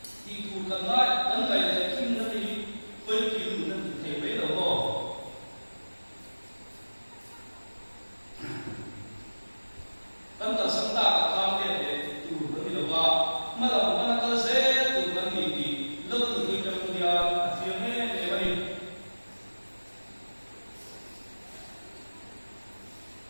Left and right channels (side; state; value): both; inverted; correlation -1.00